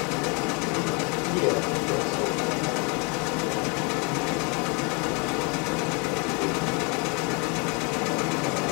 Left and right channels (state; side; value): quieter; right; 30.0 dB